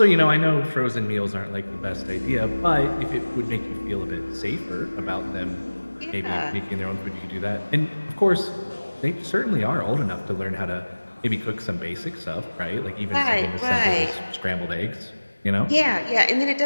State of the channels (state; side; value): inverted; both; correlation -1.00